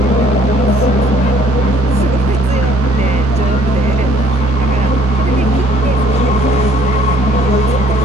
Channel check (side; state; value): both; normal; correlation 0.61